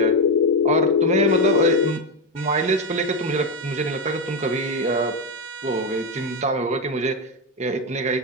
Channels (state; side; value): normal; both; correlation 0.08